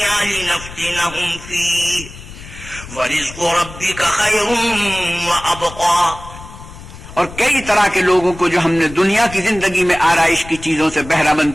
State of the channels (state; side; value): noise; left; rumble, 15 dB below the sound